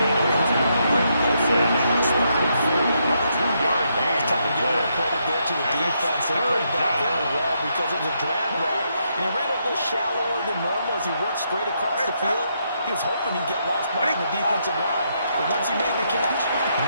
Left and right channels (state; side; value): inverted; both; correlation -0.78